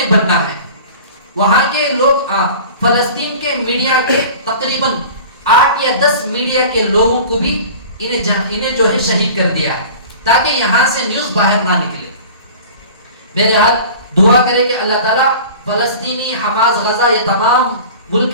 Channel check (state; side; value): inverted; both; correlation -0.41